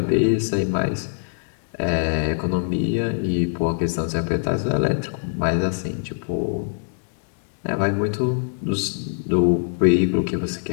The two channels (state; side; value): silent; right; 64 dB below the other